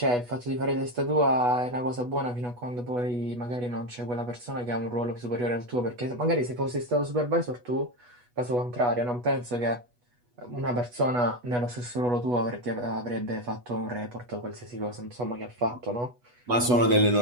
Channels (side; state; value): left; late; 8.2 ms